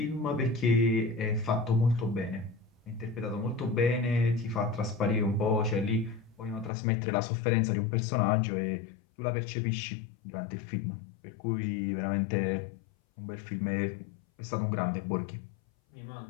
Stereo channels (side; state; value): right; drops out; at 6.7 s